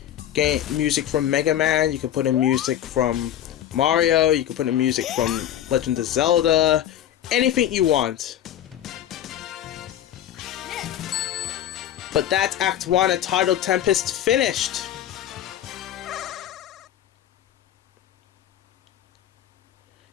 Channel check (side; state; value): right; quieter; 11.3 dB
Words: game music from Mega Man, you could put in music from Mario, you could put in music from Legend of Zelda, anything you want. But that's Act 1 of Tidal Tempest finished!